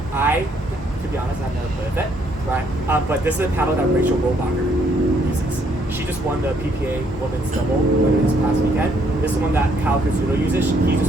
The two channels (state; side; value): normal; both; correlation 0.69